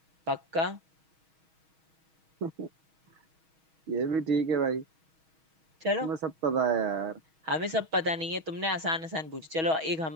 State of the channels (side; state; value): left; late; 6.3 ms